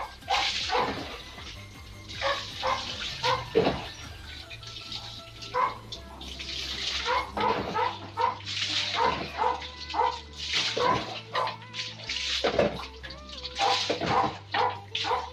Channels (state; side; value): identical; both; correlation 1.00